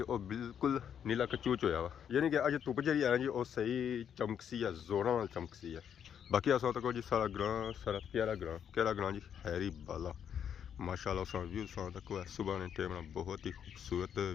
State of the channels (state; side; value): quieter; right; 8.5 dB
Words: वो बिल्कुल नीला कचूच होया वा यानी कि अज धुप जी है जी वो सही चमकसी है जोरों वाल चमकसी है। बाकी अस तक जी सारा ग्रां सारा प्यारा ग्रां जी हैरी बाला माशाल्लाह उस व्यू तक है सुबह ने टाइम बहुत ही खूबसूरत